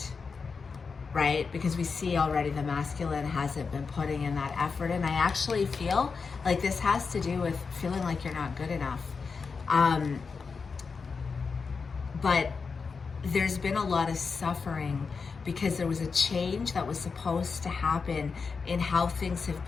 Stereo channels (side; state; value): right; quieter; 5.1 dB